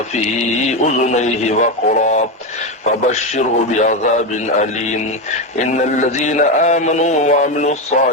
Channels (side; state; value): both; normal; correlation 0.12